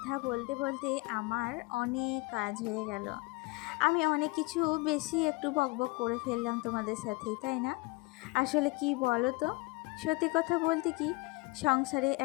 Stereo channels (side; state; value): right; quieter; 25.6 dB